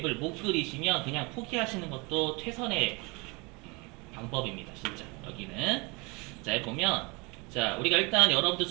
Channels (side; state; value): left; quieter; 27.8 dB